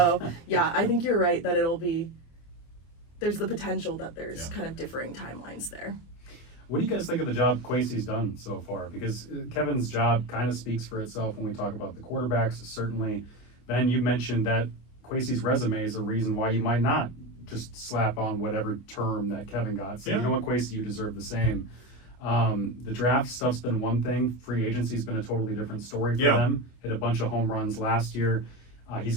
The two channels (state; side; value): late; right; 25 ms